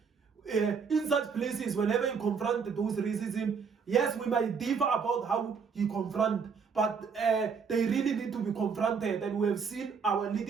In such places, whenever you confront those racism, yes, we might differ about how you confront, but they really need to be confronted. And we have seen our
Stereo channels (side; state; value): left; quieter; 5.9 dB